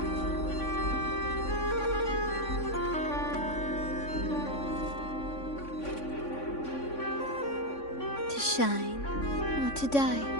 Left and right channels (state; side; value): late; right; 3.5 ms